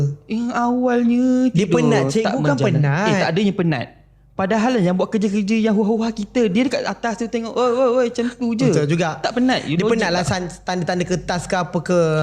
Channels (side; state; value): both; identical; correlation 1.00